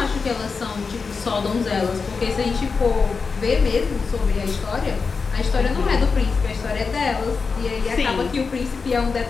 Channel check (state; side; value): quieter; right; 4.9 dB